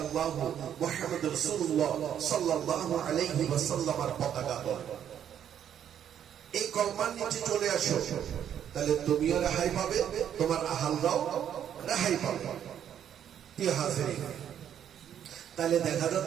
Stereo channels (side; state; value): left; quieter; 9.5 dB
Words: মুহাম্মাদুর রাসূলুল্লাহ সাল্লাল্লাহু আলাইহি ওয়াসাল্লামের পতাকা ধরে এই কলমার নিচে চলে আসো। তাহলে তুমিও রেহাই পাবে, তোমার আহালরাও রেহাই পাবে। প্রিয় হাজিরিন, তাহলে দেখা